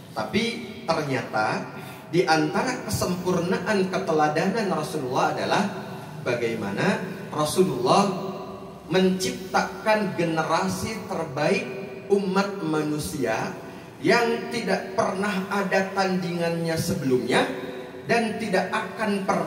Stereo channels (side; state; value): both; identical; correlation 1.00